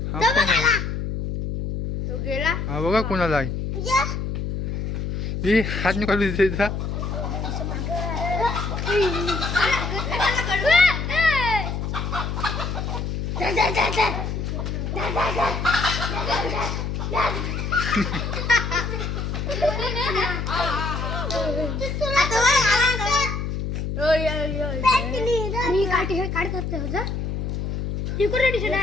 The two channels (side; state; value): left; noise; hum, 3 dB below the sound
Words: हा कोण आहे? तो गेला. हा बघा कोणाला आहे. ही हात निकालू तिचा.